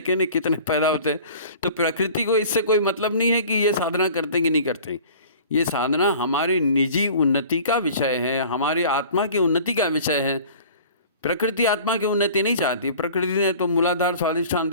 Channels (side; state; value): both; inverted; correlation -0.44